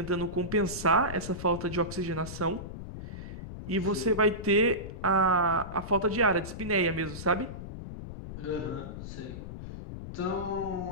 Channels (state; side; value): noise; left; rumble, 10 dB below the sound